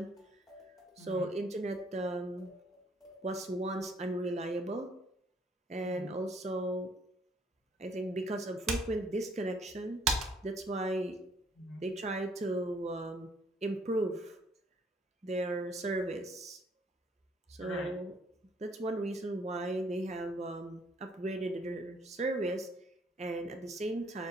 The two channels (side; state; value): both; normal; correlation 0.64